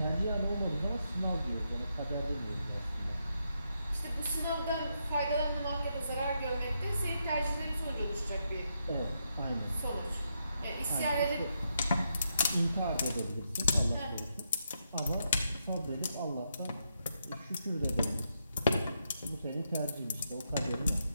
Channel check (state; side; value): inverted; both; correlation -0.81